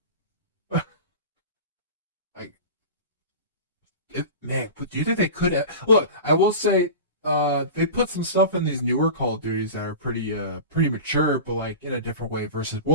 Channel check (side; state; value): both; inverted; correlation -0.31